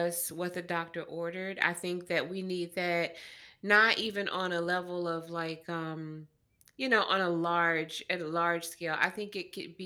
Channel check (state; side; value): identical; both; correlation 1.00